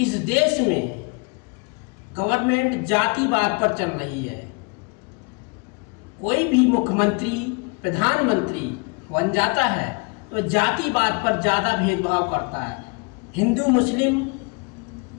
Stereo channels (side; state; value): right; quieter; 32.2 dB